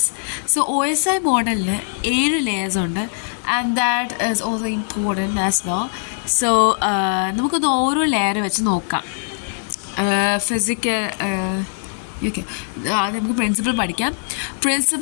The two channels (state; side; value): silent; right; 65 dB below the other